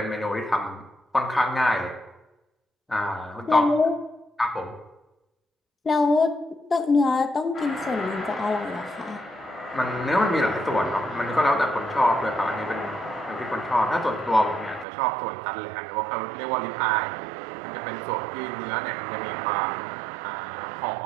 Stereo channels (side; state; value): left; drops out; at 14.9 s